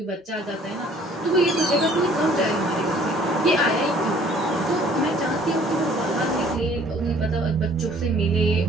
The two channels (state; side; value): normal; both; correlation 0.56